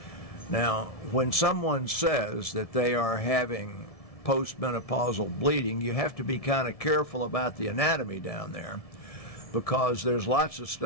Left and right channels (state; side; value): late; right; 1.7 ms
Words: Now, when someone says that they are having postmenopausal bleeding, you have to be kind of careful about the anatomy down there, because there's lots of